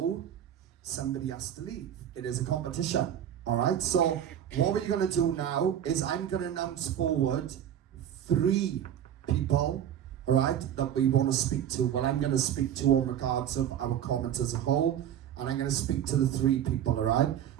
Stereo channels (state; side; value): quieter; left; 10.2 dB